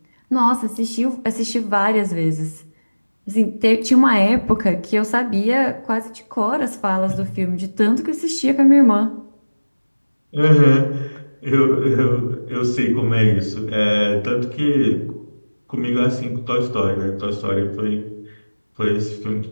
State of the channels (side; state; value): both; inverted; correlation -1.00